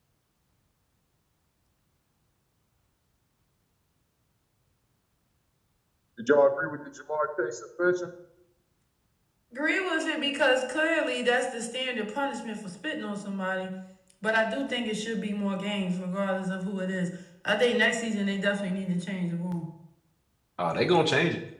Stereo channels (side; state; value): both; identical; correlation 1.00